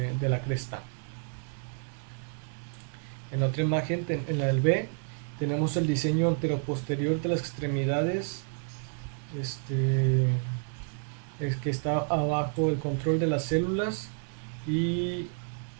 la cresta. En la otra imagen, en la del B, tenemos el diseño anteroposterior de las extremidades, es que está abajo el control de las células, y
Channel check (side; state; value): left; silent; 58 dB below the other